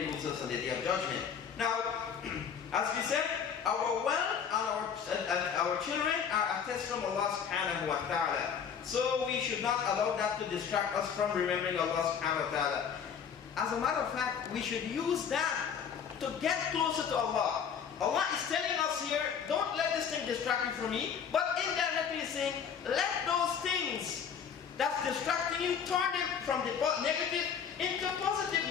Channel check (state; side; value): quieter; right; 7.3 dB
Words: losers on the Day of Judgment. Now, as we said, our wealth and our children are a test from Allah subhanahu wa ta'ala. So we should not allow that to distract us from remembering Allah subhanahu wa ta'ala. As a matter of fact, we should use that to get closer to Allah. Allah is telling us here, don't let this thing distract you from me, but indirectly saying, let those things that's distracting you, turn them from the negative into